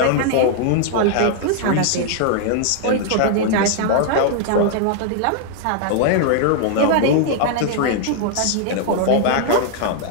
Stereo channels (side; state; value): both; different; correlation -0.01